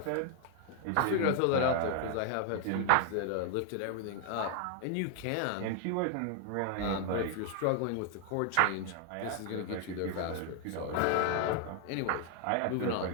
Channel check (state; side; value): different; both; correlation 0.00